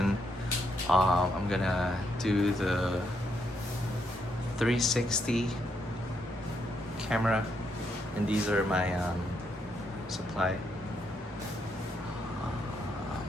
I'm gonna do the 360 camera, and these are my supply. Um,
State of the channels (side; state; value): both; normal; correlation 0.78